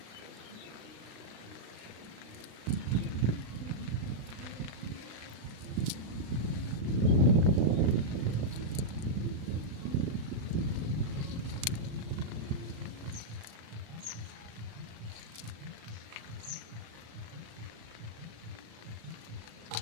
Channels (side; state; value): left; late; 36 ms